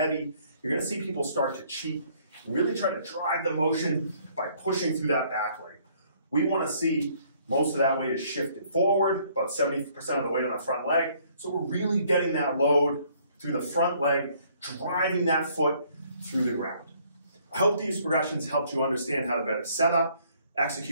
you're going to see people start to cheat and really try to drive the motion by pushing through that back leg. We want to see most of that weight is shifted forward, about 70% of the weight on the front leg. So we're really getting that load through the front leg, driving that foot through the ground. I hope these progressions helped you understand how to better set up,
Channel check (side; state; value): both; inverted; correlation -0.63